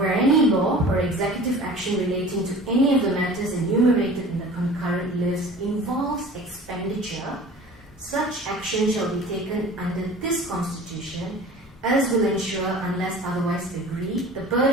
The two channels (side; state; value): both; normal; correlation 0.42